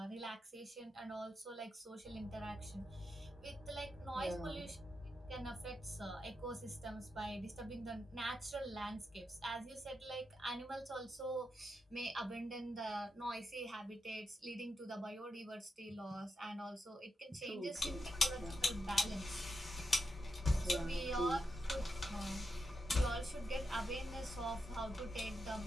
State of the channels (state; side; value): normal; both; correlation 0.87